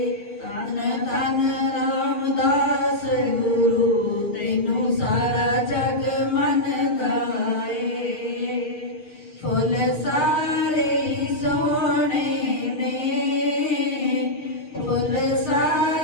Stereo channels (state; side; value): late; right; 6.6 ms